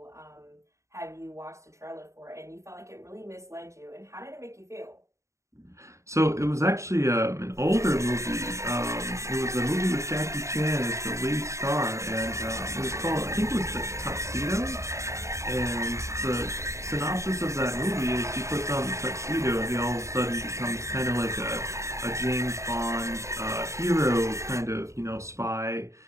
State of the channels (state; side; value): late; left; 0.14 ms